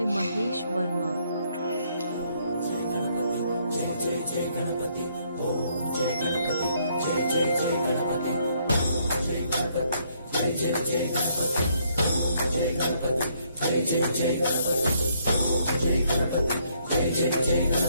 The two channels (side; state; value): both; inverted; correlation -0.70